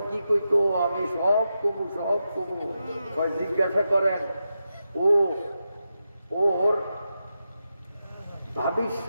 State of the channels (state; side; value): inverted; both; correlation -0.89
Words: কি কইতো, আমি সব কমু জিজ্ঞাসা করেন। ওর ভাবির